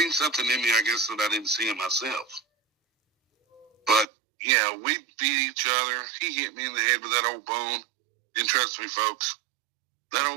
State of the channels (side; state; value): left; drops out; at 4.0 s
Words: something in me, I guess, that I didn't see in myself. But, yeah, we beat each other. He hit me in the head with that old bone. And trust me, folks, that